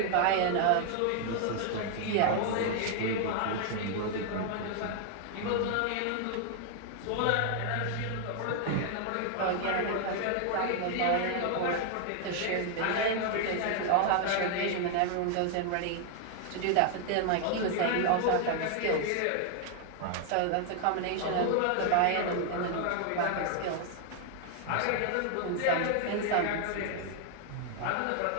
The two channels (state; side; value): different; both; correlation 0.00